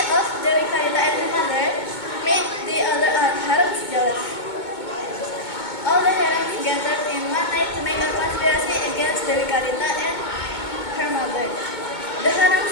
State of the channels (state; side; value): late; right; 2.2 ms